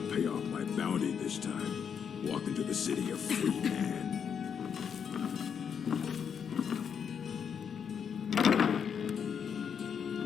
pay off my bounty this time. Walk into the city a free man.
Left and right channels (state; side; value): quieter; right; 7.3 dB